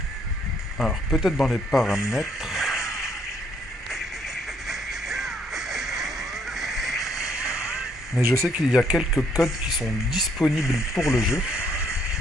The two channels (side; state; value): both; normal; correlation 0.68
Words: Alors peut-être dans les paramètres, mais je sais qu'il y a quelques codes qui sont disponibles pour le jeu.